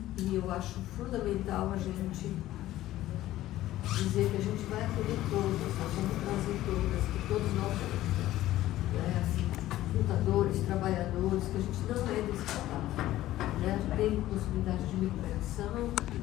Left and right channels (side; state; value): right; quieter; 14.8 dB